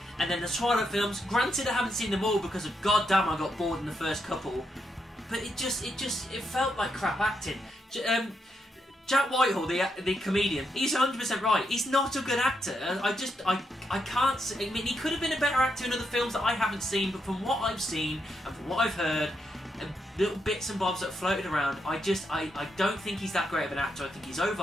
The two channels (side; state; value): both; normal; correlation 0.81